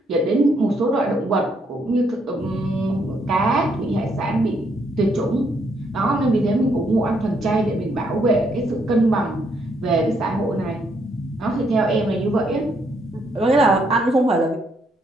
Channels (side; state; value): both; normal; correlation 0.73